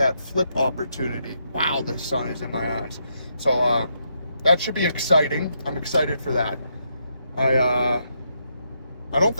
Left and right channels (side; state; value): both; inverted; correlation -0.79